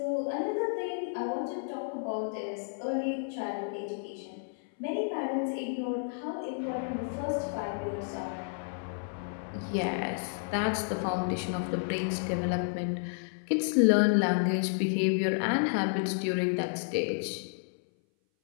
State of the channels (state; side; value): silent; right; 57 dB below the other